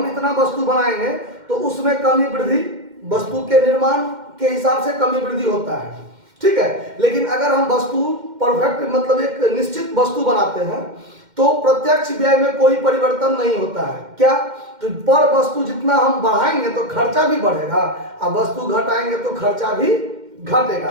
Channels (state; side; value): late; left; 2.1 ms